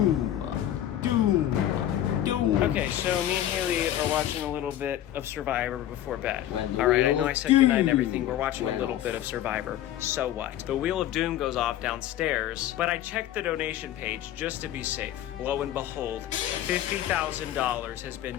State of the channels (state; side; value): quieter; right; 12.3 dB